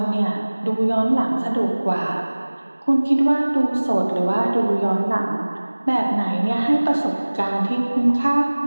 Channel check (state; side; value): inverted; both; correlation -1.00